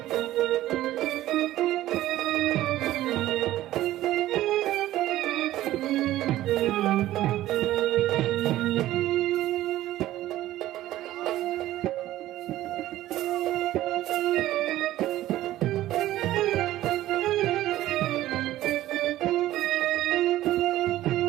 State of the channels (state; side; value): quieter; left; 14.7 dB